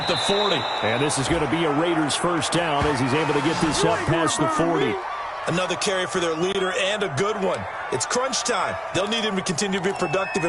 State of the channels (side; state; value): both; identical; correlation 1.00